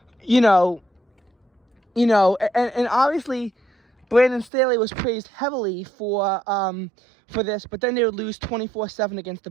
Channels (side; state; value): left; drops out; at 4.5 s